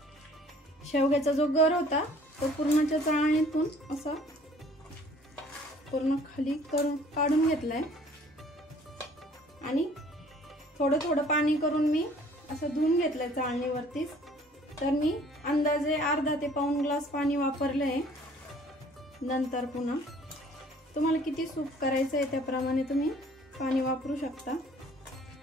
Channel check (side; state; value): both; normal; correlation 0.55